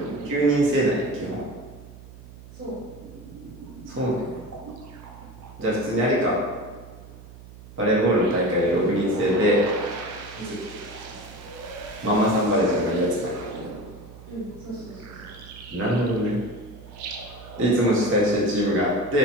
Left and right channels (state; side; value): noise; right; hum, 18 dB below the sound